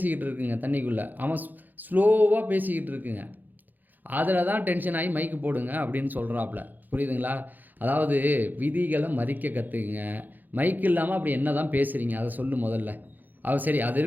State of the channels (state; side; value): late; left; 0.085 ms